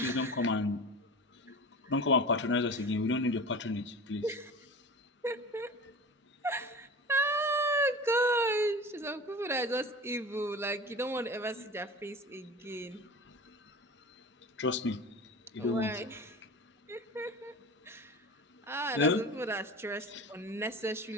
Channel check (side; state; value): both; normal; correlation 0.33